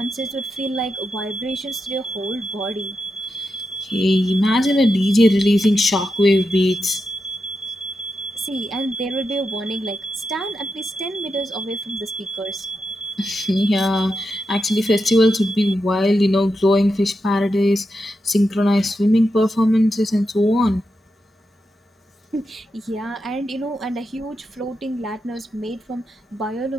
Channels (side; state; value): both; normal; correlation 0.87